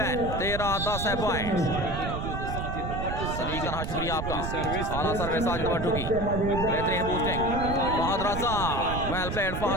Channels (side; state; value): right; noise; rumble, 4 dB below the sound